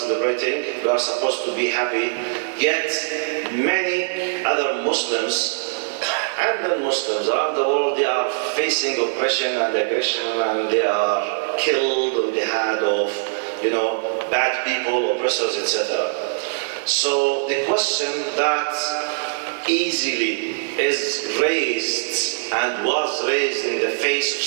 we are supposed to be happy, yet many other Muslims and non-Muslims around the world, they are facing oppression and aggression, and they are killed on the hand of, you know, bad people, oppressors, etc. So the question that easily is raised and was raised in the face of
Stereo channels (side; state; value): left; silent; digital silence